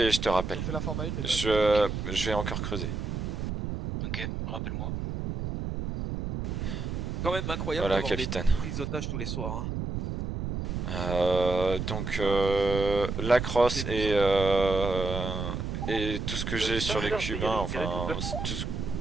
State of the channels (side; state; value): right; noise; rumble, 4 dB below the sound